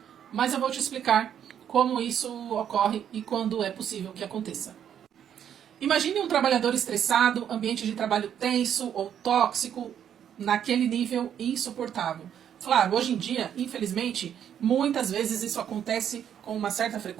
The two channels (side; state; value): left; quieter; 9.2 dB